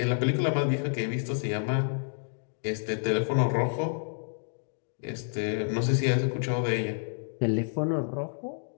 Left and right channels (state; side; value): silent; right; digital silence